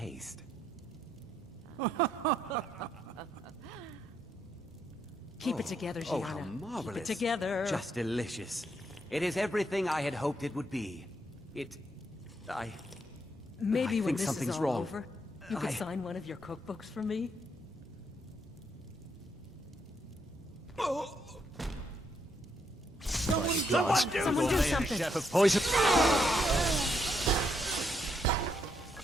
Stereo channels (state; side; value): normal; both; correlation 0.76